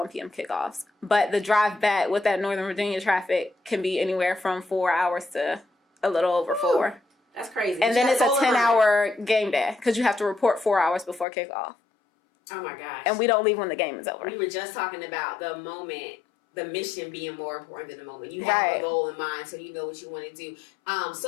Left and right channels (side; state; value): right; drops out; at 11.2 s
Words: p.m. kickoffs. But the drive back with that Northern Virginia traffic can be anywhere from 4 hours to a little over 4. That's crazy. And then it's a 10-hour game day, because you have to report 4 hours before kickoff. Oh, my gosh. And we don't leave when the game is over. We were just talking about the moment, the mission being more important than the moment. You have a goal in mind, so you know what you want to do.